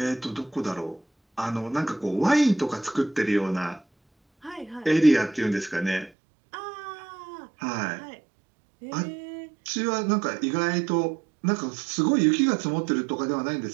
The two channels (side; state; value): left; drops out; at 6.1 s